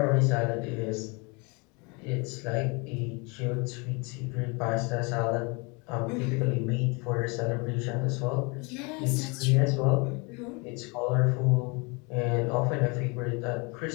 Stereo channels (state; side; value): quieter; right; 30.0 dB